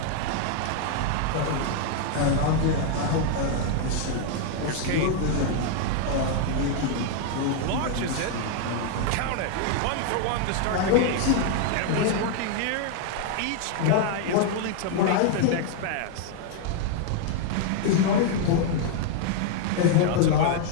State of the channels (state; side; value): different; both; correlation 0.00